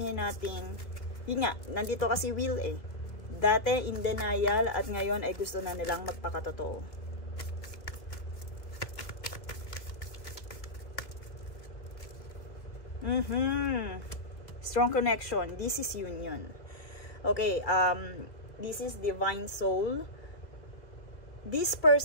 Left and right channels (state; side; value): late; right; 2.1 ms